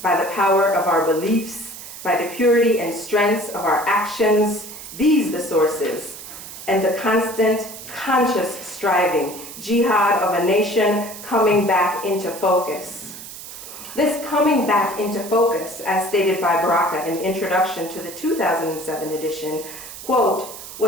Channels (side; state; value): right; noise; hiss, 13 dB below the sound